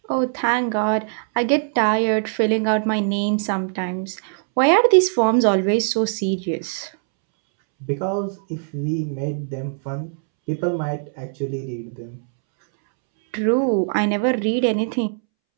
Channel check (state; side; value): silent; left; 65 dB below the other